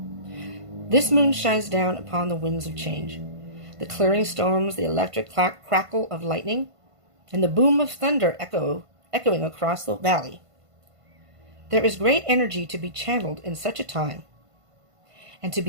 This moon shines down upon the winds of change. The clearing storms, the electric crackle of lightning, and the boom of thunder echoing across the valley. There is great energy to be channeled in such a time, and to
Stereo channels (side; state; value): left; late; 1.5 ms